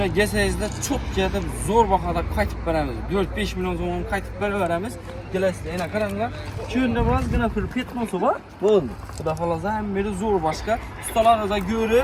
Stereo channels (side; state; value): both; identical; correlation 1.00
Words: GS'de çok ketib zo'r bahada qaytib beramiz. 4-5 milyon so'm qaytib beraveramiz. Kelasizlar, yana qaranglar. Kunda birozgina pul ketmosi bor. Bo'ldi. Xudo xolasa hammasi zo'r boshqa. Ustalarga